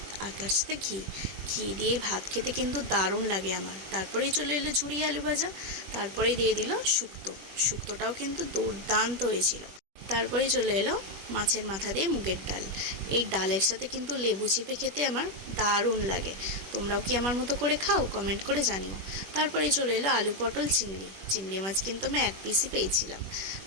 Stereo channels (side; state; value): left; late; 21 ms